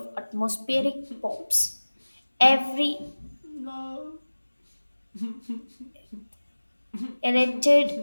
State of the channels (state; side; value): inverted; both; correlation -1.00